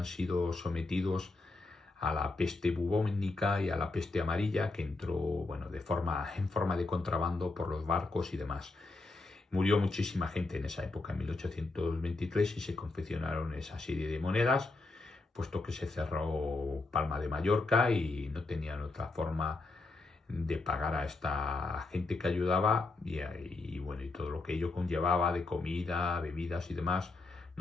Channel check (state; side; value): quieter; right; 3.5 dB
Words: sido sometidos a la peste bubónica y a la peste amarilla, que entró, bueno, en forma de contrabando por los barcos y demás. Murió muchísima gente en esa época, en 1823, y se confeccionaron esa serie de monedas, puesto que se cerró Palma de Mallorca y no tenían otra forma de pagar a esta gente que ayudaba y bueno, y todo lo que ello conllevaba de comida, bebidas y demás,